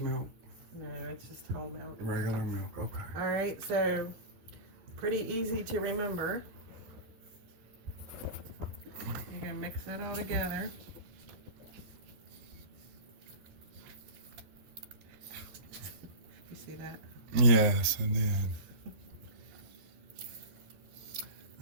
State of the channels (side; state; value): left; late; 12 ms